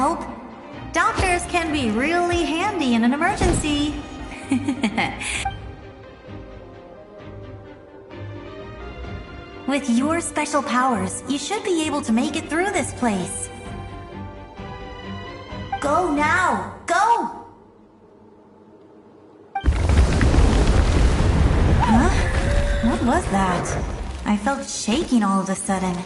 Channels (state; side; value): identical; both; correlation 1.00